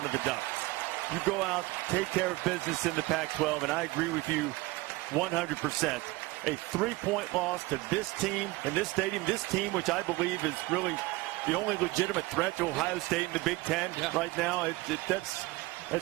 of the Ducks. You go out, take care of business in the Pac-12, and I agree with you 100%. A 3-point loss to this team in this stadium, this team which I believe is really the only legitimate threat to Ohio State in the Big Ten right now.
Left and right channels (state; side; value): quieter; left; 21.4 dB